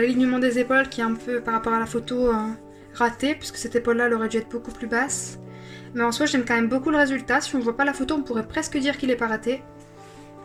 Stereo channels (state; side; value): identical; both; correlation 1.00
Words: des épaules qui est un peu, par rapport à la photo, raté, puisque cette épaule-là, elle aurait dû être beaucoup plus basse. Mais en soi, j'aime quand même beaucoup le résultat. Si on voit pas la photo, on pourrait presque dire qu'il est pas raté.